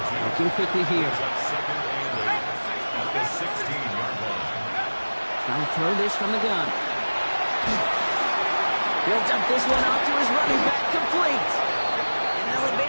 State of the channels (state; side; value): inverted; both; correlation -1.00